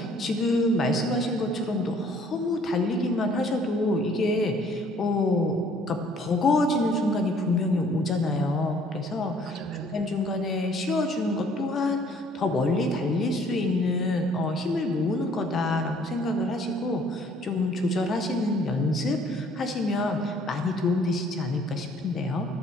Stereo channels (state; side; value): normal; both; correlation 0.59